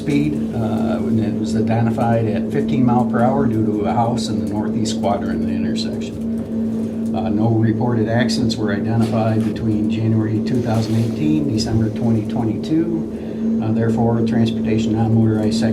when it was identified at 15 miles per hour due to a house in the northeast quadrant of the intersection. No reported accidents were identified between January 2018, December 2022. Therefore, Transportation Non-Motorized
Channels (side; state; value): both; identical; correlation 1.00